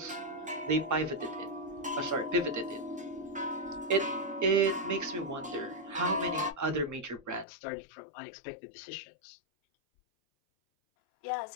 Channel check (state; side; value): drops out; right; at 7.5 s